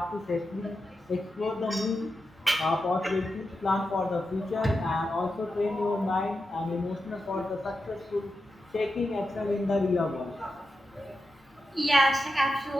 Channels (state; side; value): normal; both; correlation 0.89